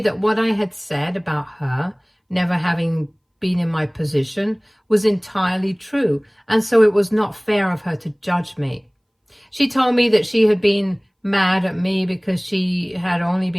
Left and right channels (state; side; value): identical; both; correlation 1.00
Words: that what I had said about her never having been in my position was entirely true, and so it was not fair of her to judge me. She told me that she had been mad at me because she had only